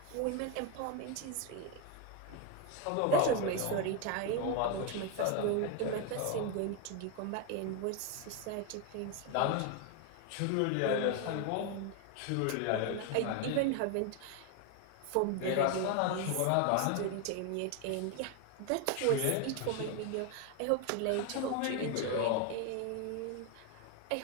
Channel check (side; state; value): both; different; correlation 0.01